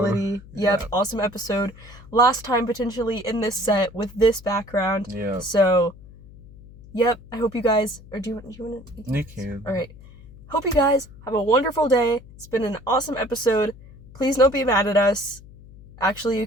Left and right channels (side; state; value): left; noise; hum, 20 dB below the sound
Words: Yep, awesome episode. Last time potentially in this set with this background. Yeah. So, yep, I hope you guys... Or do you want to... You can. All right. Hope you guys have a wonderful day. It's been an awesome episode. Please don't be mad at us. Actually, you